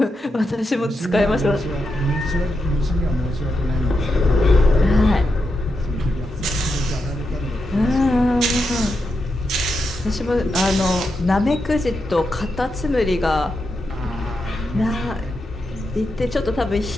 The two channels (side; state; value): both; normal; correlation 0.86